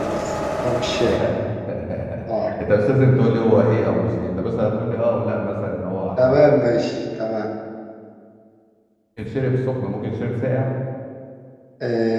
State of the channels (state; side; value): identical; both; correlation 1.00